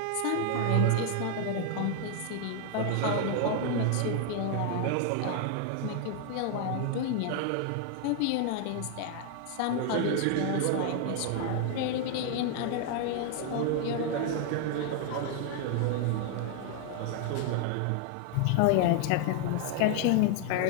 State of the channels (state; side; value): different; both; correlation 0.00